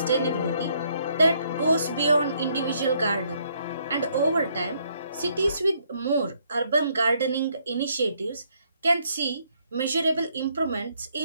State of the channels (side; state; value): both; inverted; correlation -0.70